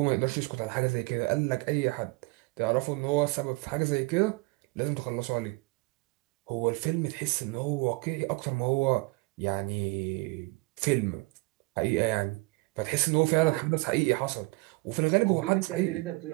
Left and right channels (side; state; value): left; quieter; 26.3 dB